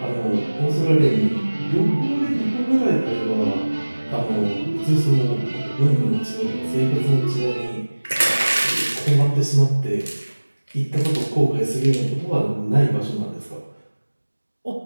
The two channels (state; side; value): inverted; both; correlation -1.00